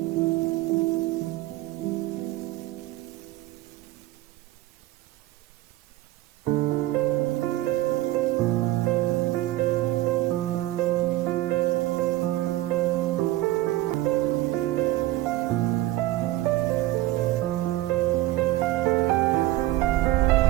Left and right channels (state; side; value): quieter; left; 16.8 dB